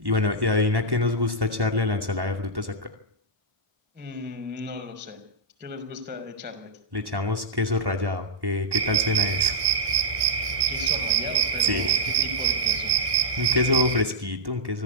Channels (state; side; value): late; left; 1.1 ms